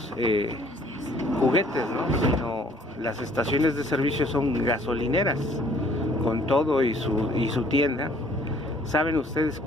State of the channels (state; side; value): normal; both; correlation 0.59